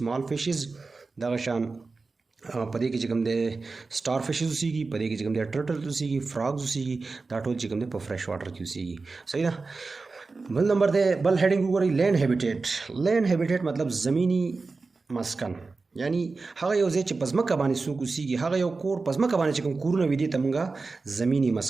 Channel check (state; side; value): quieter; left; 4.0 dB